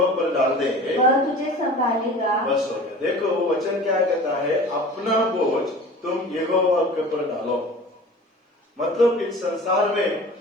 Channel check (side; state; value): both; normal; correlation 0.40